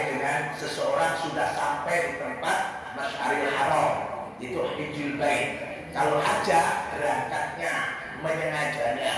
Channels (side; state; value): both; identical; correlation 1.00